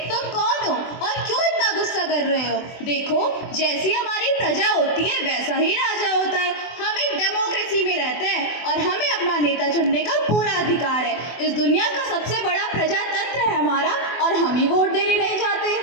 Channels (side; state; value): right; late; 24 ms